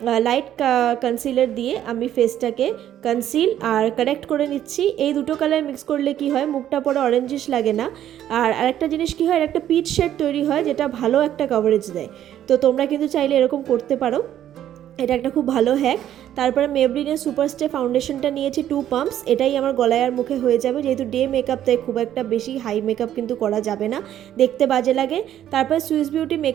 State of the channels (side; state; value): left; quieter; 11.3 dB